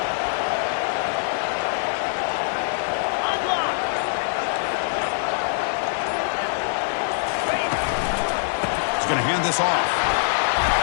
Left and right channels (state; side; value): silent; right; 63 dB below the other